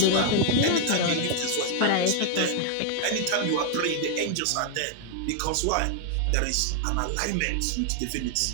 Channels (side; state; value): both; different; correlation 0.00